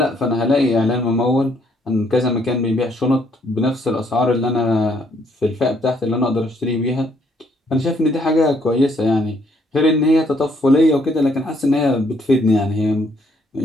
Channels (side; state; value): both; normal; correlation 0.68